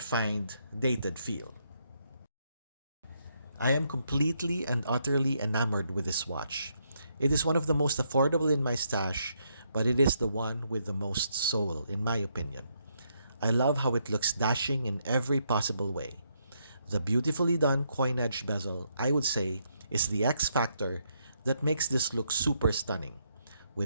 dated feel. I am completely and utterly enamored with this watch. It is one of the most affordable in my stash, but it is the one with the most soul, in my opinion. I love how it looks dashing in every possible way. The beautifully done coin-edged bezel, I would say, is the X factor that makes this look super stunning.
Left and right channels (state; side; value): inverted; both; correlation -0.76